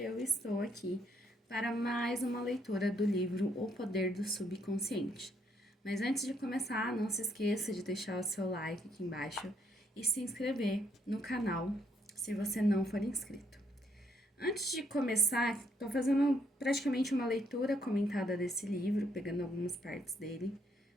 estou aqui para mais uma leitura do livro O Poder do Subconsciente. Mas antes de começar, não se esqueça de deixar o seu like aqui embaixo e se inscrever no canal se você não for inscrito. Antes de começar, estou fazendo praticamente uma leitura comentada desse livro, pegando algumas partes dele,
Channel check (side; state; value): both; normal; correlation 0.72